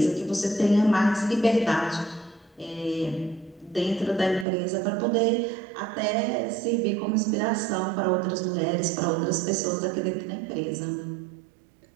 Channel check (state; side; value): drops out; left; at 4.5 s